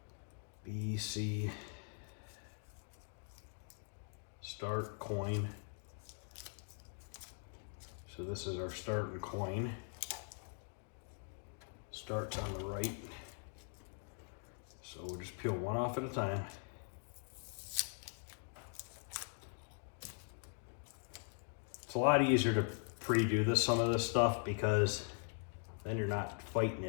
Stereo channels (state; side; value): silent; right; 50 dB below the other